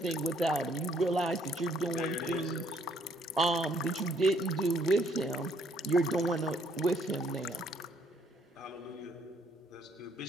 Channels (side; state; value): both; normal; correlation 0.66